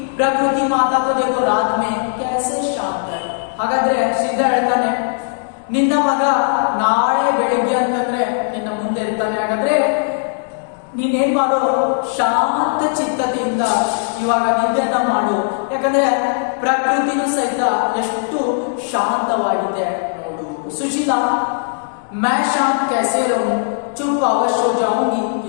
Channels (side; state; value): right; silent; digital silence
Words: प्रकृति माता को देखो रात में कैसे शांत है. ಹಾಗಾದ್ರೆ ಶ್ರೀಧರ್ ಹೇಳ್ತಾನೆ, ನಿನ್ನ ಮಗ ನಾಳೆ ಬೆಳಿಗ್ಗೆ ಅಂತಂದ್ರೆ ನಿನ್ನ ಮುಂದೆ ಇರ್ತಾನೆ. ಹಾಗಾದ್ರೆ ನೀನೇನ್ ಮಾಡು, ಶಾಂತ ಚಿತ್ತತೆಯಿಂದ ಇವಾಗ ನಿದ್ದೆಯನ್ನ ಮಾಡು. ಯಾಕಂದ್ರೆ ಪ್ರಕೃತಿನೂ ಸಹಿತ ಎಷ್ಟು ಶಾಂತವಾಗಿದೆ ನೋಡು. ಸುಶೀಲಾ, मैं शांत कैसे रहूं, चुप अवश्य हो जाऊंगी,